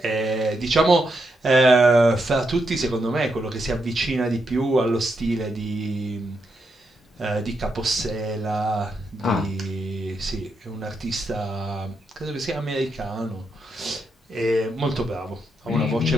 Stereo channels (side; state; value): both; normal; correlation 0.82